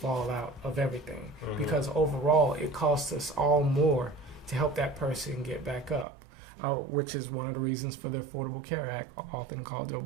out of everything, because overall it costs us all more to help that person get back up, which is one of the reasons for the Affordable Care Act, often called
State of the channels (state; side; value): drops out; left; at 6.1 s